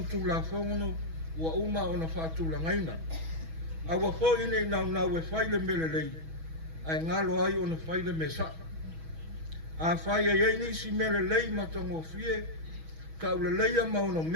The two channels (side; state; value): left; late; 6.2 ms